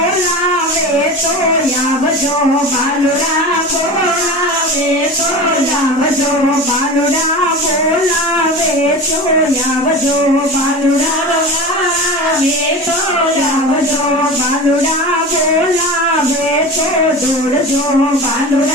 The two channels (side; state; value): both; normal; correlation 0.31